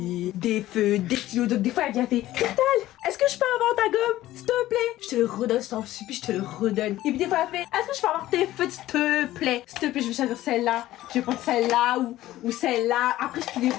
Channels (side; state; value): right; quieter; 15.1 dB